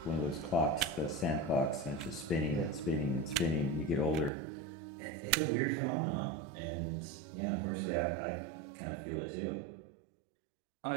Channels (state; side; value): drops out; left; at 4.3 s